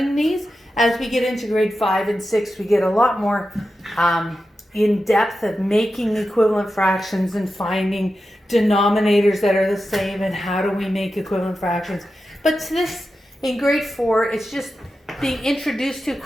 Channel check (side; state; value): both; normal; correlation 0.91